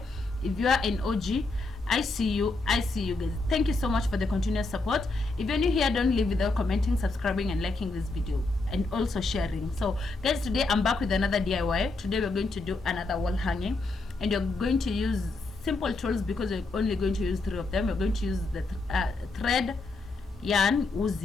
If you are an OG, I see you guys. Thank you so much for the continuous support. If you're new here, don't leave without commenting, subscribing and liking this video, and also sharing. So guys, today I'm back with another DIY. Today we're going to do another wall hanging, and you're going to use simple tools because we're only going to use 3 of them. We're going to use the thread, yarn,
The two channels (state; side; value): quieter; right; 3.4 dB